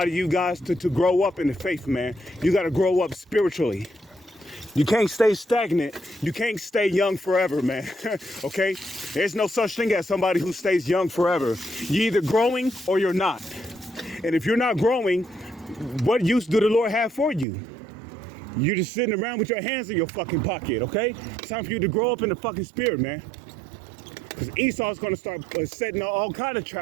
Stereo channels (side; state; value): left; drops out; at 17.4 s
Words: of you guys to grow up in the faith, man. You got to grow up spiritually. You can't stay stagnant. You can't stay young forever, man. Okay? There's no such thing as somebody who stays young forever. You're either growing or you're not. And if you're not growing, what use do the Lord have for you? You're just sitting around with your hands in your fucking pocket, okay? It's time for you to grow up in the fucking spirit, man. Because Esau's going to start setting all kind of